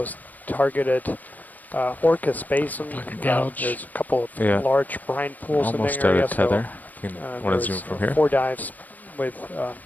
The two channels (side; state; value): right; late; 0.082 ms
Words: targeted Orcas Basin. Like a gouge. There's a couple of large brine pools Almost in the area. out of tether. Want to zoom from here? 4 dives with